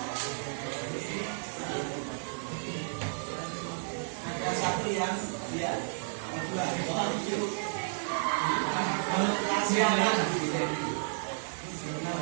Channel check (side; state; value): left; silent; digital silence